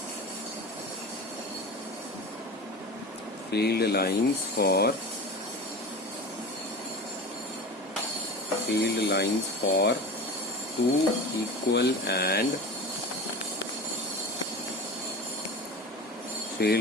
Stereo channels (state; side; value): normal; both; correlation 0.32